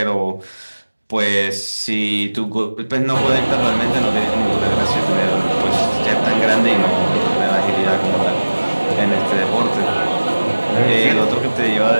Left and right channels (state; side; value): inverted; both; correlation -1.00